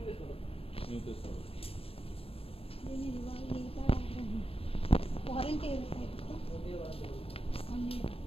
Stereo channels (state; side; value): late; right; 0.27 ms